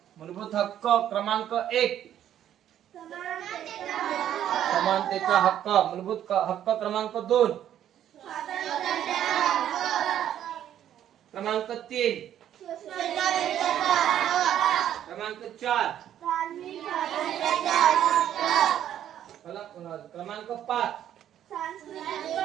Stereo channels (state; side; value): quieter; left; 10.8 dB